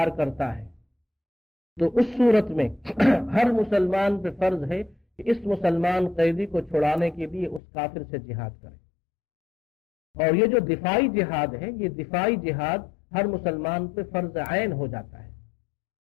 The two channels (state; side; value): drops out; right; at 7.6 s